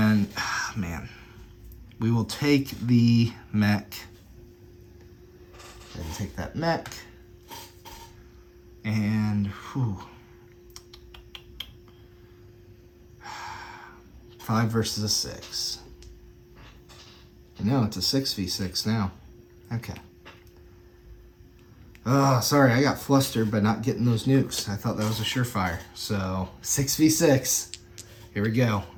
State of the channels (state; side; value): identical; both; correlation 1.00